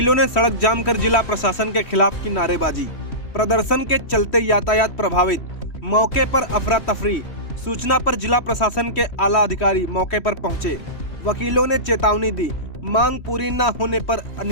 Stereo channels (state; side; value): late; right; 3.1 ms